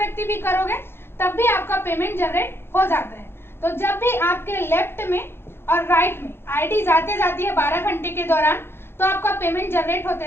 भी करोगे तब भी आपका पेमेंट जनरेट हो जाता है। तो जब भी आपके लेफ्ट में और राइट में आईडी जाते जाती है 12 घंटे के दौरान, तो आपका पेमेंट जनरेट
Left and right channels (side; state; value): right; late; 0.11 ms